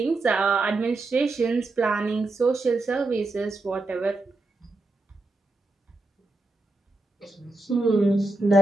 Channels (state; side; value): quieter; left; 3.1 dB